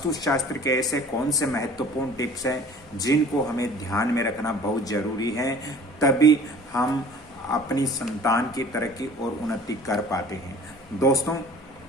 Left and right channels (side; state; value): both; normal; correlation 0.48